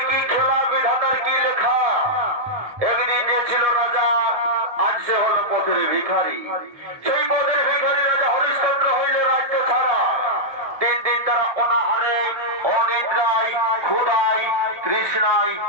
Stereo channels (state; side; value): late; left; 1.2 ms